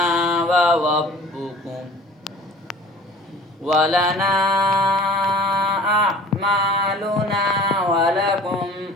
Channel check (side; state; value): both; normal; correlation 0.47